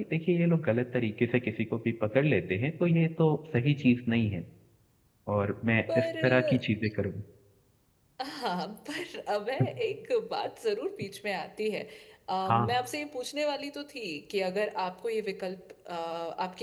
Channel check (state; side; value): identical; both; correlation 1.00